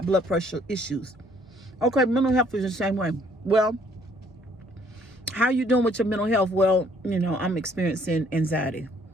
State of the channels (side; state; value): both; normal; correlation 0.63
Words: blood pressure issues. Okay, mental health is the same way. Well, how you doing with your mental health? Well, I'm experiencing anxiety.